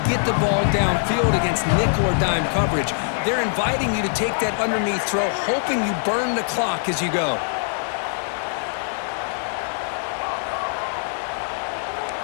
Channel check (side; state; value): right; silent; digital silence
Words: get the ball downfield against nickel or dime coverage. They're inviting you to take that underneath throw, hoping you burn the clock as you go.